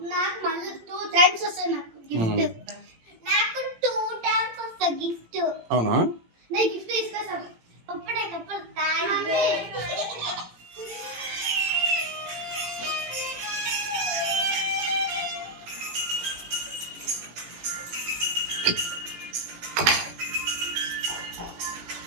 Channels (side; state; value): left; late; 18 ms